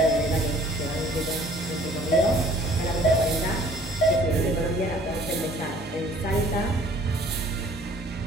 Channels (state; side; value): normal; both; correlation 0.54